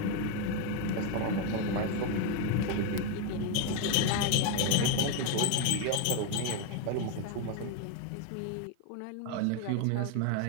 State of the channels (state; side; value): different; both; correlation 0.02